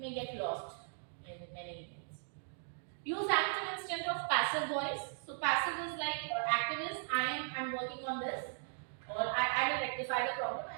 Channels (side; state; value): left; silent; digital silence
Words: get lost in many emails. Use active instead of passive voice. So passive is like, or active is I'm working on this, or I will rectify the problem,